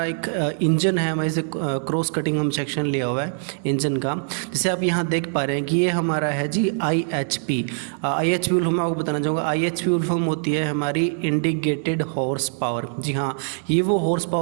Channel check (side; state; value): left; silent; digital silence